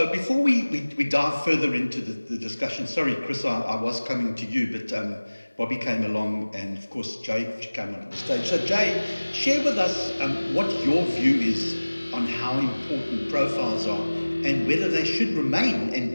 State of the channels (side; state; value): both; inverted; correlation -1.00